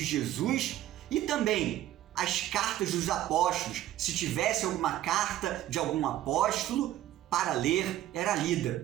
Jesus e também as cartas dos apóstolos. Se tivesse alguma carta de algum apóstolo para ler, era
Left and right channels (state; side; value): quieter; left; 13.3 dB